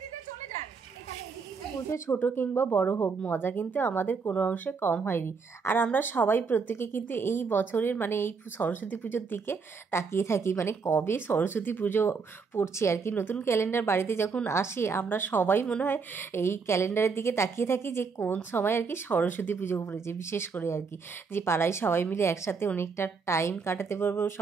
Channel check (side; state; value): left; quieter; 5.1 dB